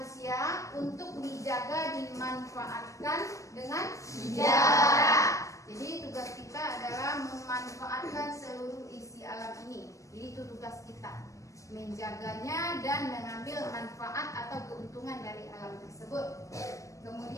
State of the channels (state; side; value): late; right; 0.15 ms